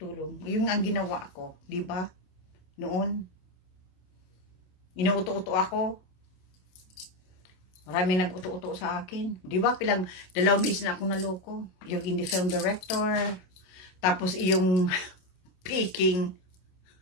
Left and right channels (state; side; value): late; right; 27 ms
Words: Yung ang ginawa ko, di ba? Noon, inuuto-uto ako. Marami nag-uto-uto sa akin. Di ba? 2 beses na akong naloko. Yung indie film director. Tapos yung picking